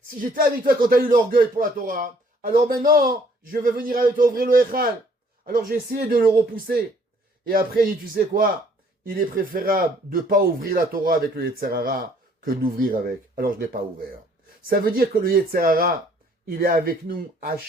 Si j'étais avec toi quand tu as eu l'orgueil pour la Torah, alors maintenant, je vais venir avec toi ouvrir le Echal. Alors j'ai essayé de le repousser. Et après, il dit, tu sais quoi? Il est préférable de ne pas ouvrir la Torah avec le Yetzer Hara que d'ouvrir avec. Alors je ne l'ai pas ouvert. Ça veut dire que le Yetzer Hara, il est avec nous à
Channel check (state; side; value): normal; both; correlation 0.61